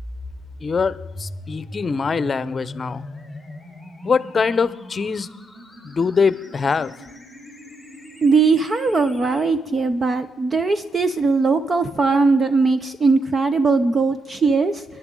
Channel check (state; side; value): normal; both; correlation 0.81